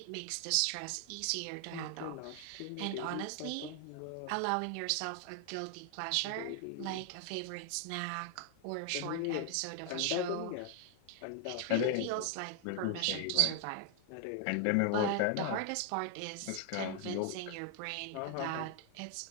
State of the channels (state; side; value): different; both; correlation 0.00